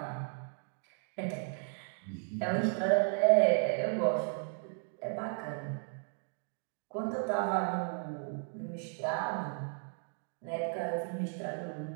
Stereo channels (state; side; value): silent; left; 55 dB below the other